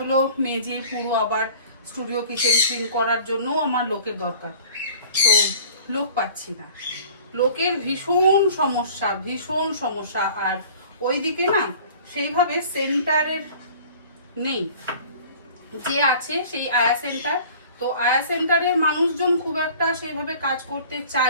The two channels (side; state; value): both; inverted; correlation -0.47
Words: মেজে পুরো আবার স্টুডিও কিচেন ক্লিন করার জন্য আমার লোকের দরকার। তো লোক পাচ্ছি না, লোকের ভীষণ সমস্যা, ভীষণ সমস্যা। আর ওইদিকে না সেইভাবে সেন্টারের নেই, যে আছে সেই আয়া সেন্টার। তো আয়া সেন্টারের মানুষজন খুব একটা সেইভাবে কাজ করতে